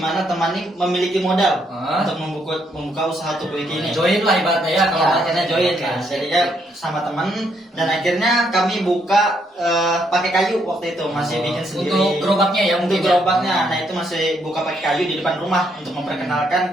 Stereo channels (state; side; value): normal; both; correlation 0.73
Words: mana teman ini memiliki modal untuk membuka usaha Tukuiki ini. Join lah ibaratnya ya. Kalau akhirnya join kan, jadinya sama teman, dan akhirnya kami buka pakai kayu waktu itu, masih bikin sendiri. Untuk gerobaknya ya Untuk mungkin. gerobaknya, nah itu masih buka pakai kayu di depan rumah untuk memperkenalkan